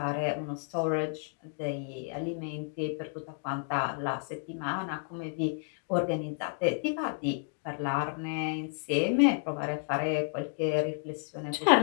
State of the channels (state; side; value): silent; right; 57 dB below the other